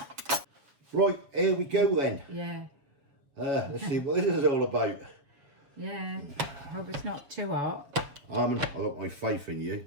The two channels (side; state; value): left; late; 7.1 ms